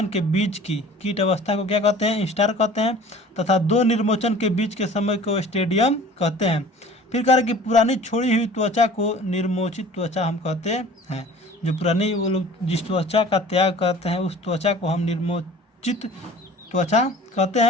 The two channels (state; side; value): normal; both; correlation 0.45